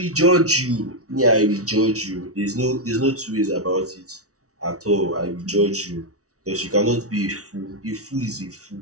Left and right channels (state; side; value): late; left; 0.65 ms